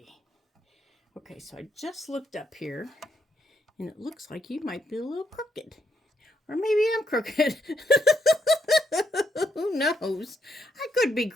Okay, so I just looked up here, and it looks like you might be a little crooked. Or maybe I'm crooked. Who knows? I could be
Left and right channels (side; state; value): both; normal; correlation 0.76